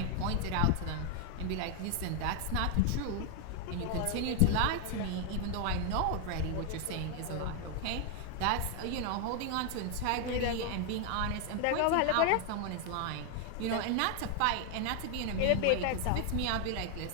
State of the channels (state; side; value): different; both; correlation 0.00